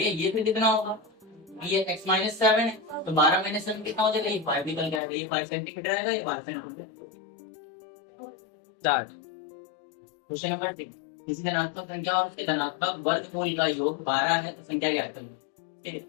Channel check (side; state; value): right; drops out; at 5.0 s